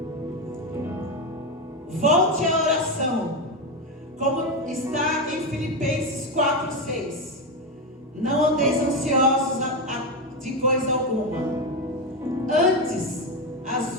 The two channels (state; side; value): normal; both; correlation 0.12